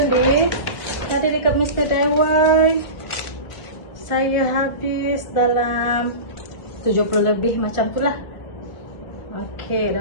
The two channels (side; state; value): right; late; 1.6 ms